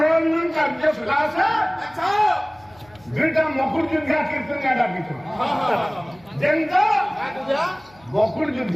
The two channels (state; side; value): noise; left; hum, 28 dB below the sound